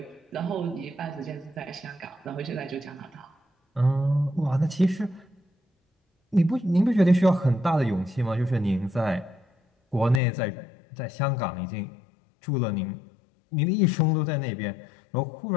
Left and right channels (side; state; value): right; drops out; at 10.2 s